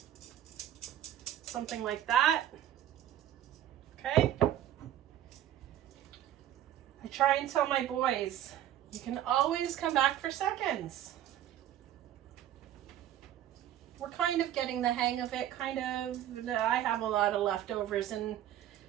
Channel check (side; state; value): left; quieter; 11.8 dB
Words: Something like that. Okay? I try and tell my boys, you can always come back for seconds. We're kind of getting the hang of it, kind of. I have a lot of leftovers in